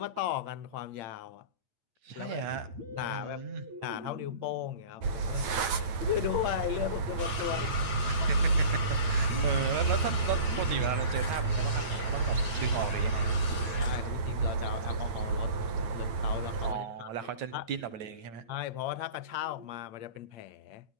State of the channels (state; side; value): late; left; 8.8 ms